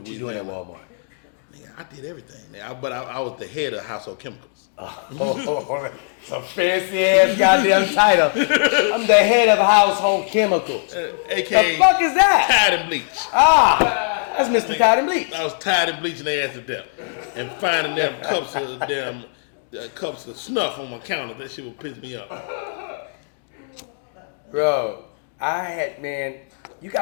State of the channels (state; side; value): silent; right; digital silence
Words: you doing at Walmart? Nigga, I did everything. But I was the head of household chemicals. Some fancy ass goddamn title. I'm the head of household chemicals. AKA the fuck is that? Tide and bleach. That's Mr. Tide and Bleach. I was tired of bleaching their ass to death and finding them cups of snuff on my counter. That shit would piss me off. Bro, you